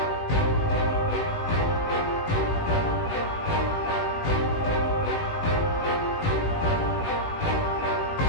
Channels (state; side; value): late; right; 18 ms